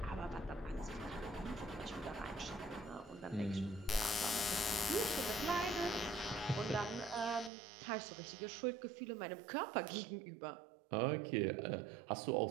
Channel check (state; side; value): drops out; left; at 7.5 s